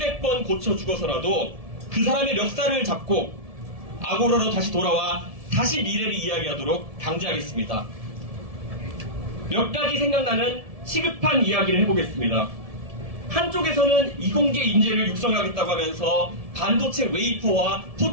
고쳐 죽어서라도 그 사람의 멱살을 잡고 아고라로 다시 돌아와 다시 미래를 이야기하도록 강제하겠습니다. 몇 가지 생각나는 시급한 이야기를 해보겠습니다. 한쪽에서는 이공계 인재를 육성하겠다고 하면서 반도체 웨이퍼와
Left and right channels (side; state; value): left; late; 1.7 ms